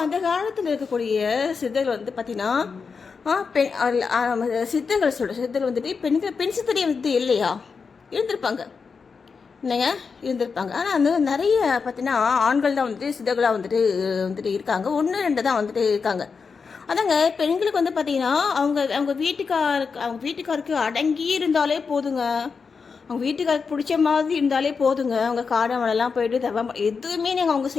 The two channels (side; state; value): right; quieter; 5.3 dB